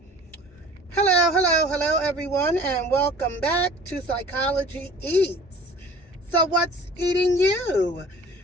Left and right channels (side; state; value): both; normal; correlation 0.46